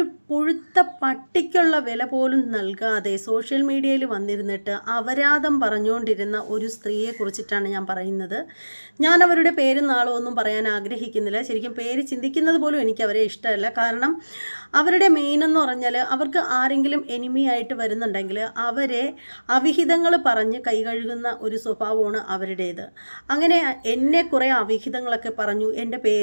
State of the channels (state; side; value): inverted; both; correlation -1.00